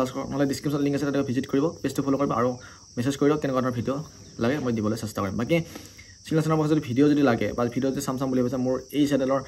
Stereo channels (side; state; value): both; identical; correlation 1.00